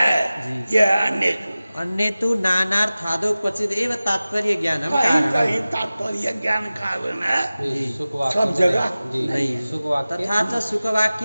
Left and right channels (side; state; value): both; inverted; correlation -0.97